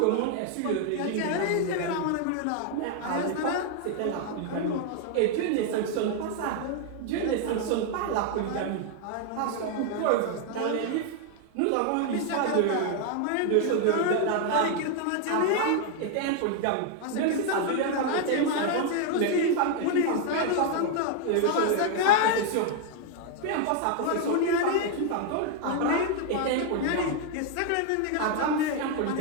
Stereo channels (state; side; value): different; both; correlation 0.00